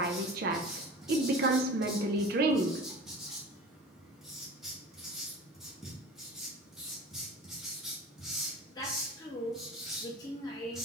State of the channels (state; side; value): normal; both; correlation 0.38